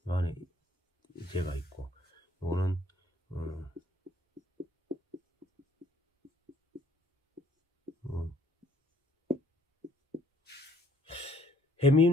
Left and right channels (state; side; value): normal; both; correlation 0.62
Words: 요 안에 제가 있고, 요거는